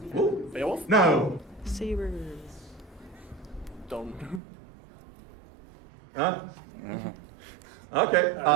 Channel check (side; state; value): left; drops out; at 4.4 s